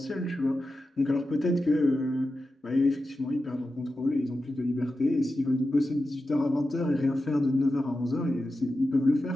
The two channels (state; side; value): normal; both; correlation 0.91